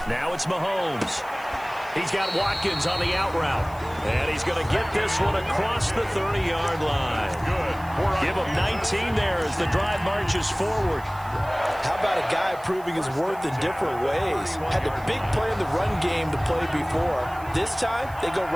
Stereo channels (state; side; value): noise; right; hiss, 23 dB below the sound